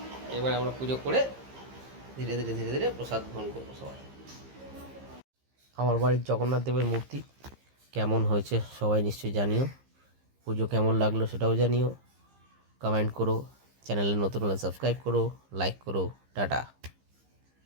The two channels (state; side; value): late; left; 15 ms